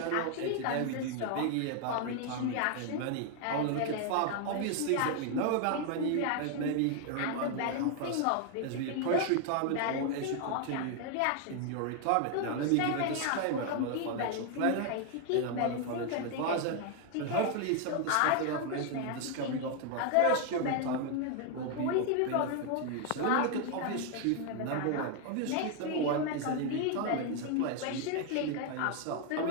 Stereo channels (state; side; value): different; both; correlation 0.01